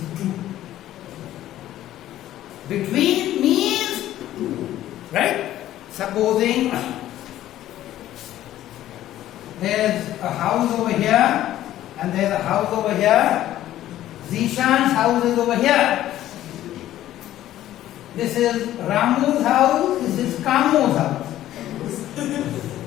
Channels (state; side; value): quieter; right; 13.3 dB